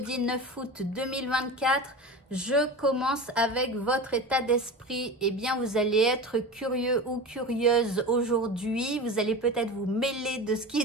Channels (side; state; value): both; normal; correlation 0.29